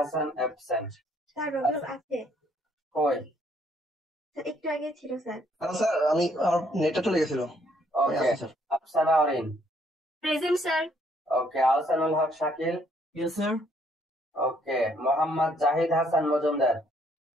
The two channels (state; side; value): normal; both; correlation 0.67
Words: অ্যাবসেন্ট। স্যার রবিউল আছে কই? স্যার একটু আগে ছিল স্যার। স্যার আমি আমার নেটটা চলে গেছিল। Okay. Afsana Orin present sir. Okay. Ahsanul Haque Shakil yes sir. Okay. Mohammad Zahid Hasan Majumdar